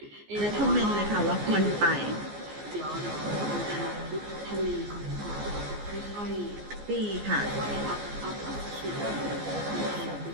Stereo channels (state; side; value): late; left; 14 ms